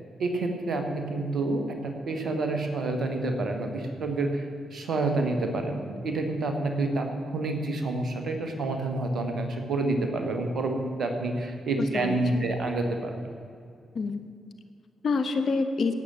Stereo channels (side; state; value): both; normal; correlation 0.74